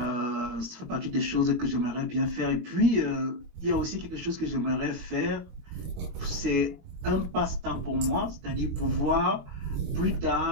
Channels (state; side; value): late; left; 21 ms